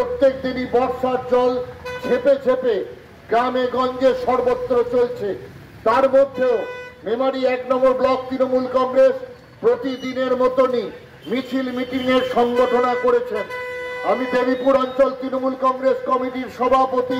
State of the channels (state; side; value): identical; both; correlation 1.00